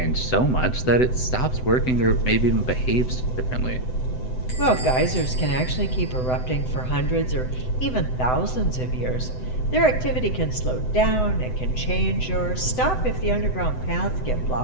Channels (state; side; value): late; right; 7.9 ms